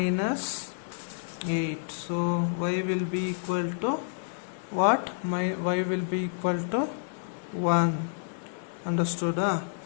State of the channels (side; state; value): right; silent; digital silence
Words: 8. So y will be equal to what? Y will be equal to 1. Understood?